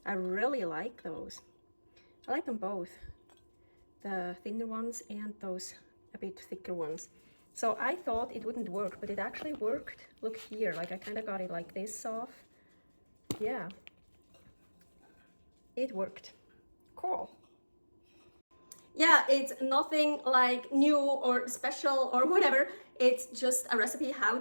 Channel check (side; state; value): both; inverted; correlation -1.00